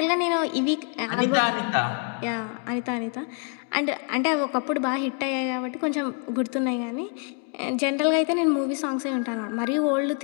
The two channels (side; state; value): right; quieter; 39.7 dB